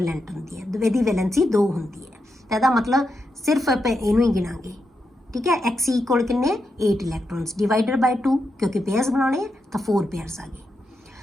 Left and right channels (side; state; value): both; normal; correlation 0.85